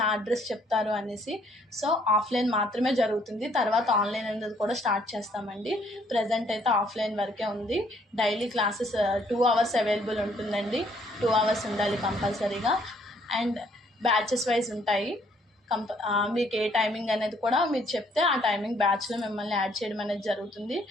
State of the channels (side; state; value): both; normal; correlation 0.65